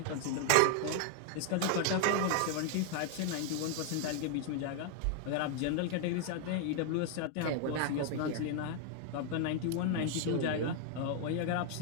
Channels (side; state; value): both; different; correlation 0.00